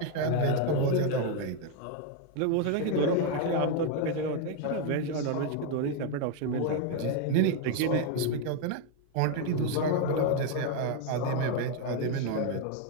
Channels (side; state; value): both; different; correlation 0.01